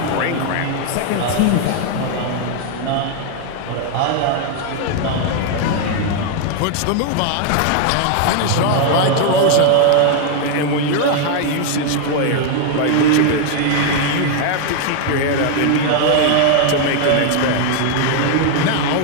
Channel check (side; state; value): both; different; correlation 0.00